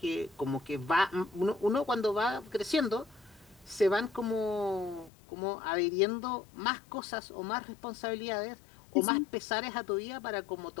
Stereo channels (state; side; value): drops out; right; at 5.1 s